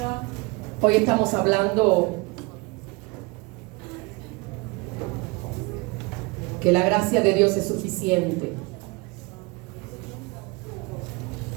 Hoy estamos hablando que la gracia de Dios es suficiente.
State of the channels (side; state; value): left; quieter; 26.8 dB